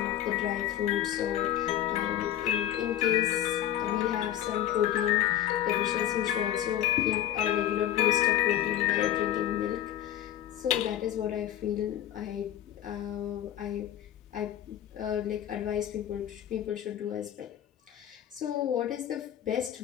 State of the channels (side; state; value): right; quieter; 11.7 dB